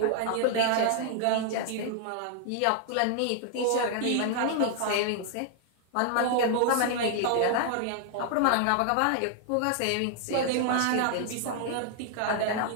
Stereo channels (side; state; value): both; different; correlation 0.00